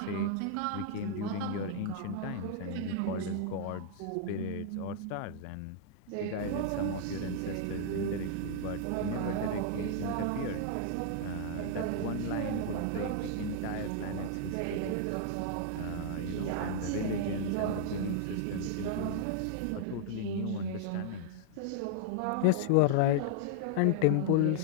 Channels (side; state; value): both; different; correlation -0.01